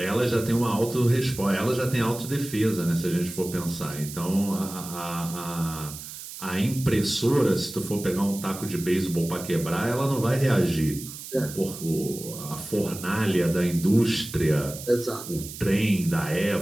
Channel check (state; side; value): noise; right; hiss, 12 dB below the sound